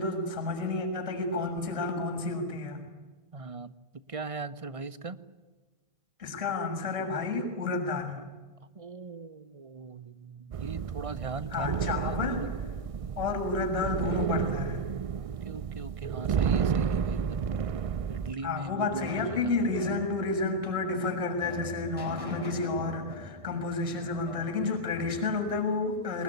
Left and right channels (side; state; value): left; late; 1.6 ms